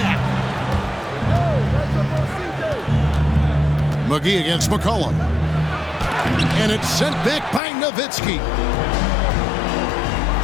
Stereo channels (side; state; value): right; drops out; at 7.6 s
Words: McGee against McCollum. And it's sent back by Nowitzki.